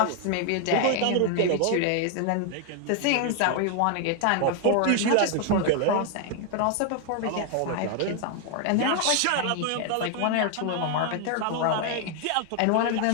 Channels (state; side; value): different; both; correlation 0.00